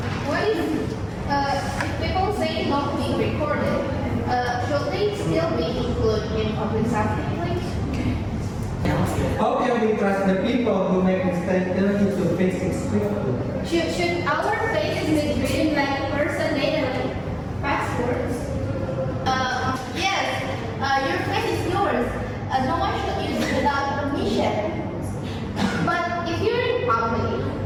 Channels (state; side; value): identical; both; correlation 1.00